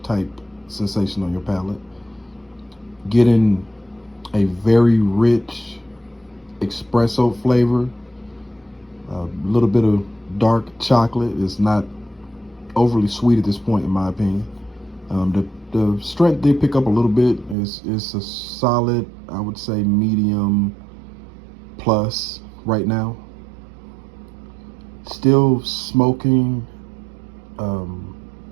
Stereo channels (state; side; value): drops out; left; at 17.6 s